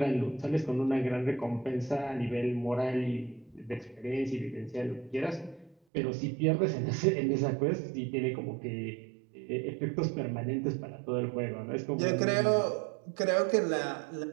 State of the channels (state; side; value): drops out; left; at 5.8 s